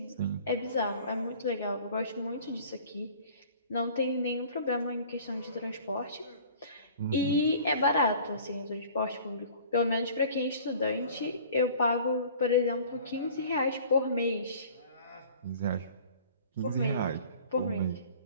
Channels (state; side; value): inverted; both; correlation -0.47